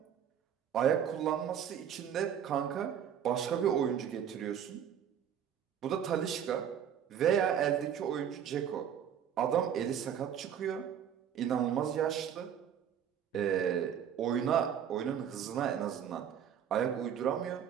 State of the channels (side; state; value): left; quieter; 8.9 dB